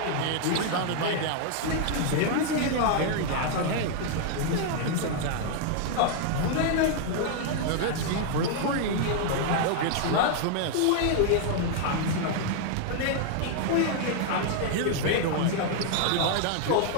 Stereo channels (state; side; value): different; both; correlation 0.00